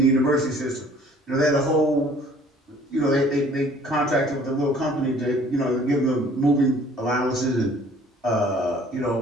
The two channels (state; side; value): normal; both; correlation 0.54